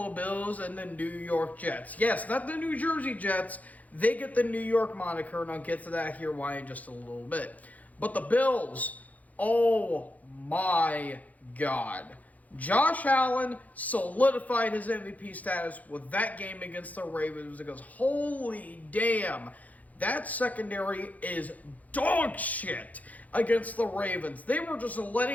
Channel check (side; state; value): right; late; 0.076 ms